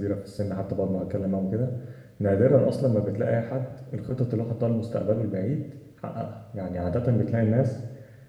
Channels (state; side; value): identical; both; correlation 1.00